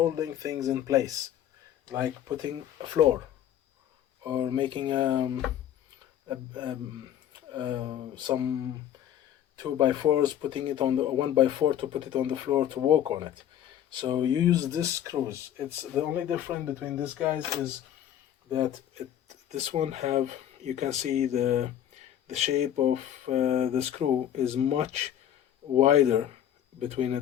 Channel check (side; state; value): right; quieter; 10.7 dB